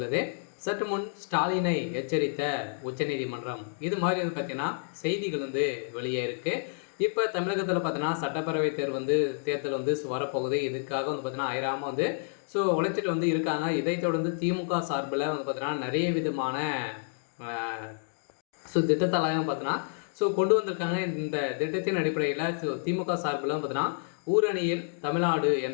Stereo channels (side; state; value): right; silent; digital silence